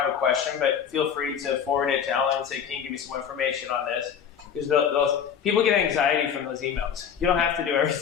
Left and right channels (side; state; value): right; quieter; 7.9 dB